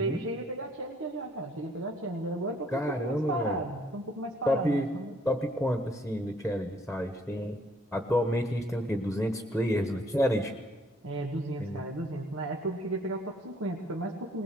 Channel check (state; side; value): normal; both; correlation 0.64